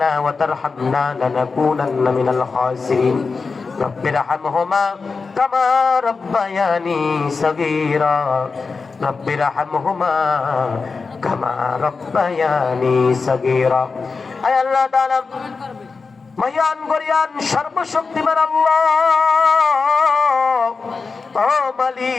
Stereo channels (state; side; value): quieter; right; 4.6 dB